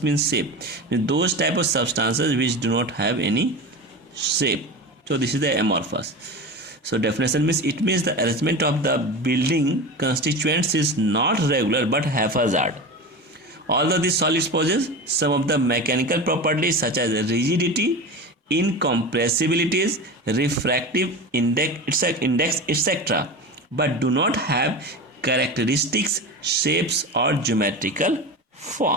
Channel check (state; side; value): normal; both; correlation 0.27